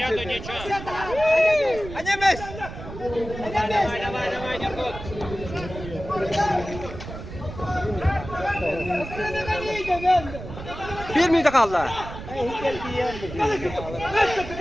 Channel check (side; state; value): right; noise; rumble, 11 dB below the sound